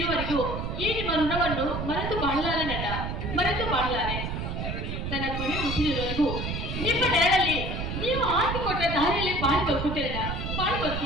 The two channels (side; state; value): right; noise; rumble, 4 dB below the sound